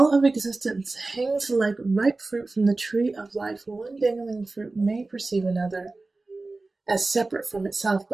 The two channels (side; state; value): left; quieter; 3.4 dB